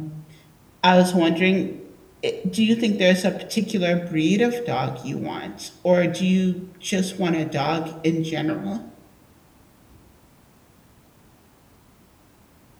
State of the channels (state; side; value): identical; both; correlation 1.00